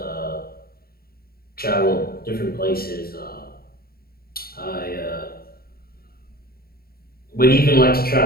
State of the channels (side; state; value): right; late; 0.44 ms